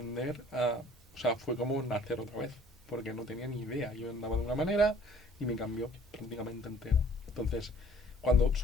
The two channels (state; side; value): normal; both; correlation 0.54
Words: o sea, fue como nacer otra vez, porque no tenía ni idea. Yo andaba de una manera y me cambió prácticamente entero. Entonces, cuando